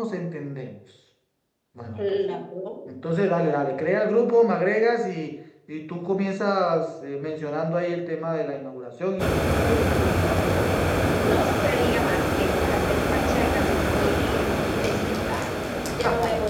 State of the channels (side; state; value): both; identical; correlation 1.00